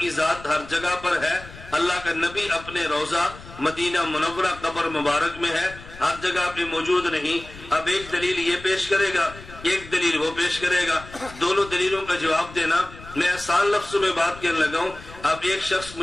ذات ہر جگہ پر ہے، اللہ کا نبی اپنے روضہ مدینہ منورہ قبر مبارک میں ہے، ہر جگہ پہ موجود نہیں۔ اب ایک دلیل یہ پیش کرے گا، ایک دلیل وہ پیش کرے گا، دونوں دلیلوں کا جواب دینا۔ میں آسان لفظوں میں بات کرنے لگا ہوں۔ اب ایک شخص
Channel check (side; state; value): left; noise; rumble, 17 dB below the sound